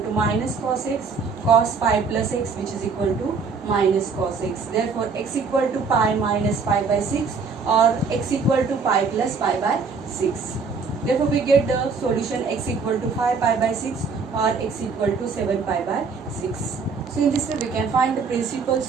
minus cos x, cos pi plus x, which is equal to minus cos x. Therefore, x equal to pi minus pi by 6 or x equal to pi plus pi by 6. Therefore, we get the solution x equal to 5 pi by 6 or x equal to 7 pi by 6. So, in this way, we can find the principal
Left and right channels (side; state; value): left; quieter; 4.9 dB